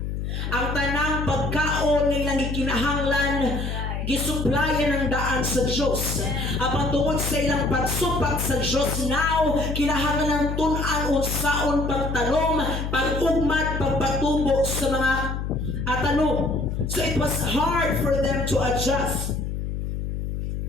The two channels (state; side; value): noise; left; hum, 3 dB below the sound